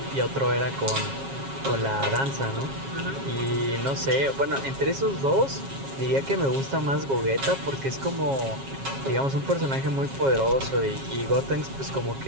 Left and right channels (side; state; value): left; late; 7.4 ms